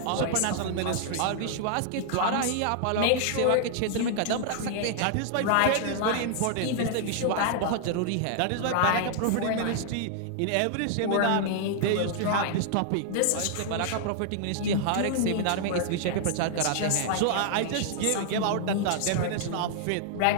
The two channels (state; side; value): different; both; correlation -0.01